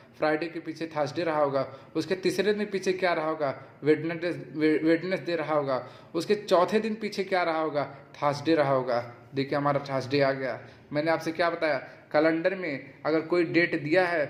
फ्राइडे के पीछे थर्सडे रहा होगा। उसके तीसरे दिन पीछे क्या रहा होगा, वेडनेसडे रहा होगा। उसके चौथे दिन पीछे क्या रहा होगा, थर्सडे रहा होगा। देखिए हमारा थर्सडे आ गया। मैंने आपसे क्या बताया, कैलेंडर में अगर कोई डेट दिया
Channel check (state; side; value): identical; both; correlation 1.00